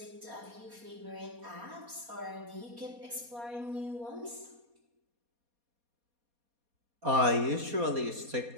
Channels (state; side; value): late; left; 4.2 ms